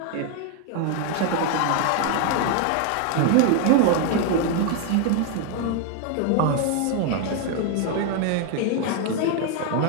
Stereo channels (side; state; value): both; different; correlation 0.01